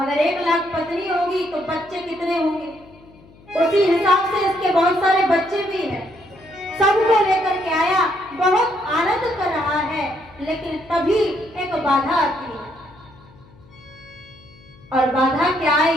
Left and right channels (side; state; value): left; noise; hum, 25 dB below the sound